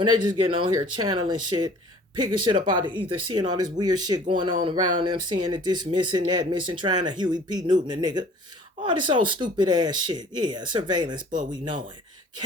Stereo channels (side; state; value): both; normal; correlation 0.50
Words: they just getting on here channeling shit, picking shit up out of ether, seeing all this weird shit going on around them, seeing that this missing, that missing, trying to Huey P. Newton a nigga. All this old stupid ass shit. Yeah, surveillance, but we know it.